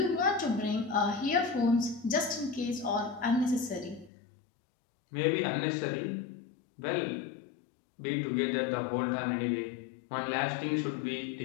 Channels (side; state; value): right; drops out; at 4.1 s